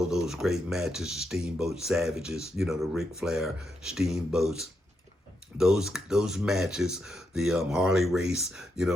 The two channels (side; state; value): both; normal; correlation 0.82